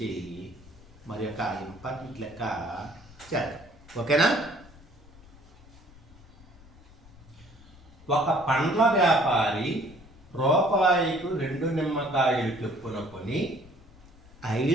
మరి యొక్క ఇంపార్టెంట్ లెక్క చేద్దాం. ఓకేనా? ఒక పండ్ల వ్యాపారి రూపాయికు 2 నిమ్మకాయలు చొప్పున కొని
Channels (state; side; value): noise; left; rumble, 23 dB below the sound